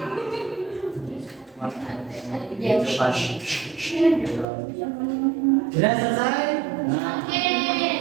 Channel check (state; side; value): drops out; left; at 4.5 s